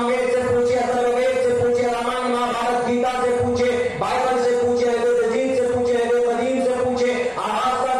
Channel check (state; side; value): identical; both; correlation 1.00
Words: سے پوچھے, اتھروید سے پوچھے, رامائن مہابھارت گیتا سے پوچھے, بائبل سے پوچھے, جین سے پوچھے, قدیم سے پوچھے,